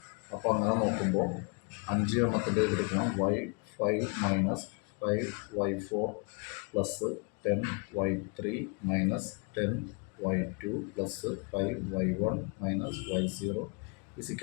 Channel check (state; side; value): quieter; right; 35.1 dB